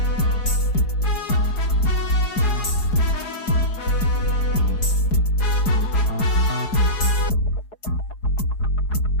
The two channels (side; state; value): right; late; 4.8 ms